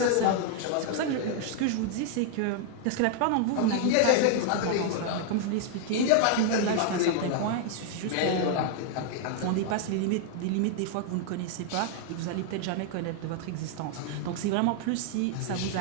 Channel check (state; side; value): different; both; correlation 0.00